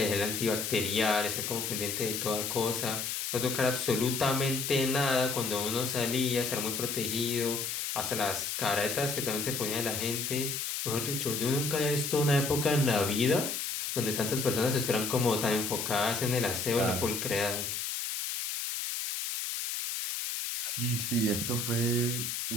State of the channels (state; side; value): noise; left; hiss, 3 dB below the sound